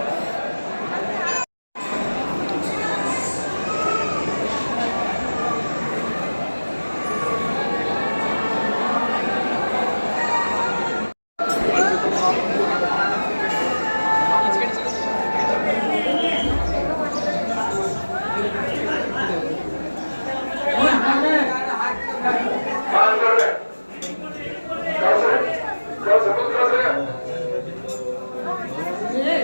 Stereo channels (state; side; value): inverted; both; correlation -1.00